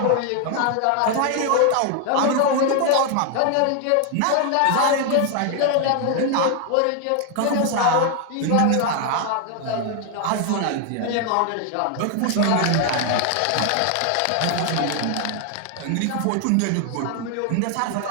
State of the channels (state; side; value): different; both; correlation 0.00